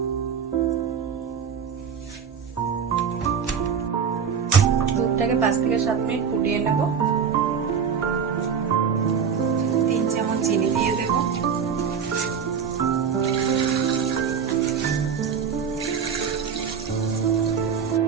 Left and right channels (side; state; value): left; quieter; 6.9 dB